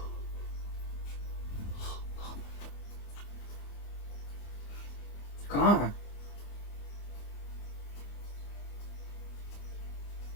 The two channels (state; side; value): late; right; 25 ms